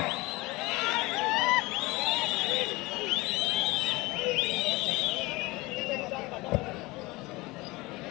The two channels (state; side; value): quieter; right; 22.0 dB